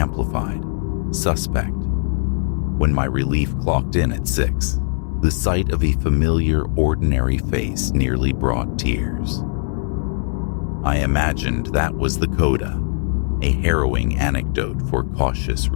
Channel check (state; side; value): silent; right; 65 dB below the other